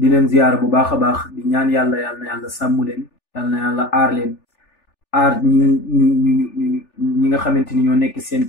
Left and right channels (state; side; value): late; right; 3.4 ms